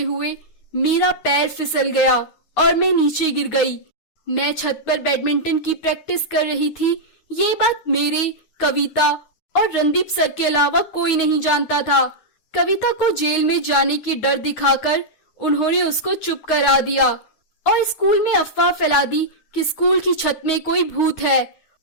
मेरा पैर फिसल गया और मैं नीचे गिर गई। मैं छत पर बैडमिंटन की प्रैक्टिस कर रही थी, ये बात मेरे, कविता और रणदीप सर के अलावा कोई नहीं जानता था। कविता को जेल में जाने की डर दिखाकर उन्होंने उसको चुप करा दिया और स्कूल में अफवाह फैला दी कि स्कूल की छत में कोई भूत है,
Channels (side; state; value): right; late; 9.5 ms